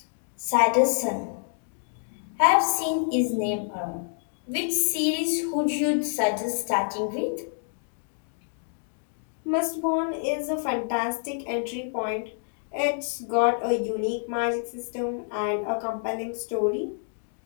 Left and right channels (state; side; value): silent; right; digital silence